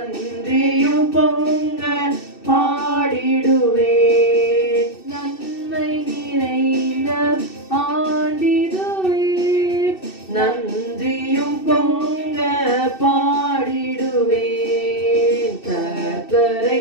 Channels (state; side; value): late; right; 2.6 ms